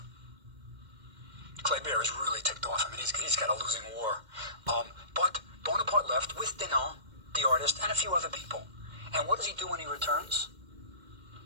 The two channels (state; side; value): late; left; 2.1 ms